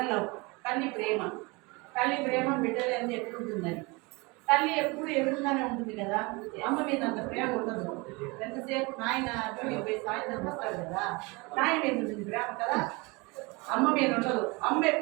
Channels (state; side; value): quieter; left; 26.4 dB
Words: లవ్, తల్లి ప్రేమ. తల్లి ప్రేమ బిడ్డలు ఎంత ఎట్లుంటుందని. తల్లి ఎప్పుడు ఎదురుగానే ఉంటుంది కదా, అమ్మ మీద అంత ప్రేమ ఉండదు. ఎంతసేపు నాయన పోయి సాయంత్రం వస్తాడు కదా, నాయన మీద ఉంటుంది ప్రేమ కదా, అమ్మ మీద ఉండదు. అమ్మ